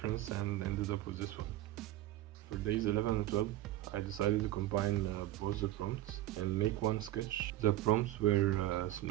and ended up with this one. For days 11 and 12, I decided to combine both the prompts and make one sketch. The prompts were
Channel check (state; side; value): quieter; left; 14.6 dB